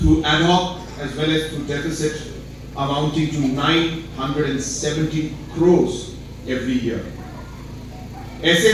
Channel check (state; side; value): identical; both; correlation 1.00